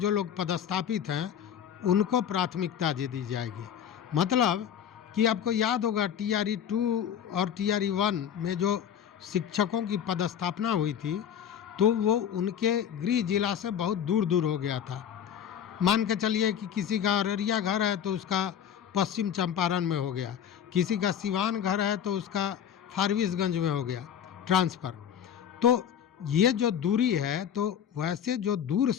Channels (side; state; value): right; quieter; 8.9 dB